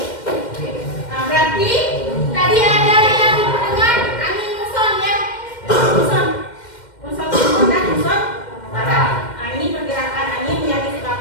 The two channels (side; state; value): right; late; 2.1 ms